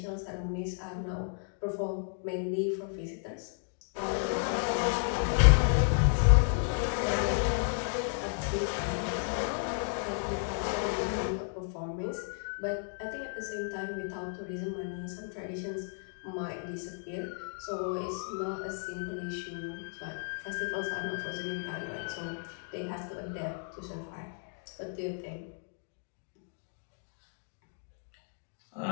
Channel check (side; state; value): right; silent; 56 dB below the other